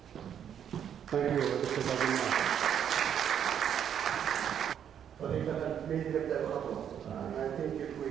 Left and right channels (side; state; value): left; quieter; 9.0 dB